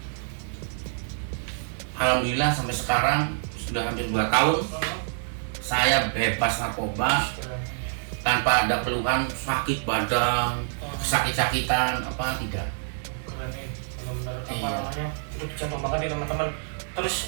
Alhamdulillah sampai sekarang sudah hampir 2 tahun saya bebas narkoba tanpa tanpa ada keluhan sakit badan, sakit-sakitan apa tidak. Keren nih, benar-benar apa Iya. namanya itu dicontoh banget nih teman-teman. Terus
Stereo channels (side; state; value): left; silent; digital silence